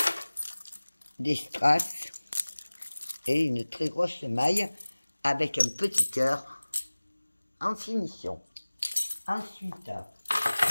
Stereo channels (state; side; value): inverted; both; correlation -1.00